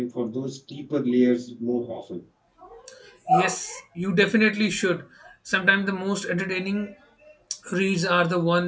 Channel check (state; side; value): identical; both; correlation 1.00